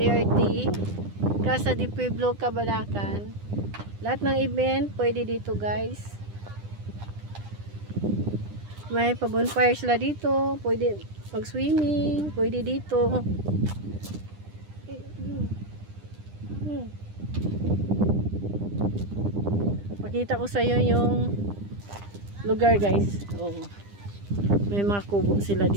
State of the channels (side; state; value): left; late; 9.9 ms